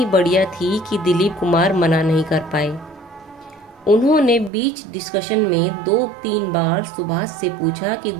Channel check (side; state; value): left; drops out; at 4.5 s